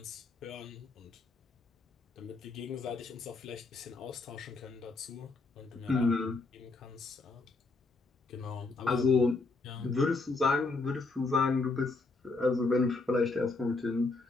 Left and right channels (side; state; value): right; quieter; 3.7 dB